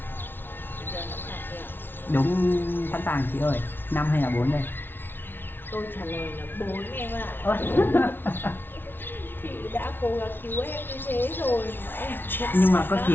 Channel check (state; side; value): late; right; 0.10 ms